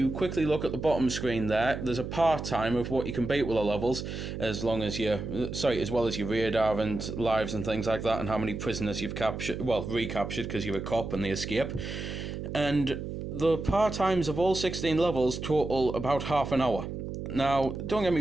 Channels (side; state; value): right; noise; hum, 6 dB below the sound